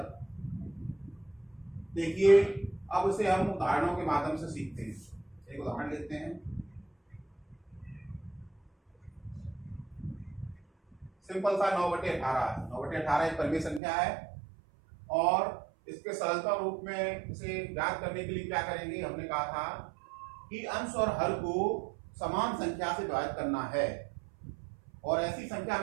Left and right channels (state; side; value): drops out; left; at 13.8 s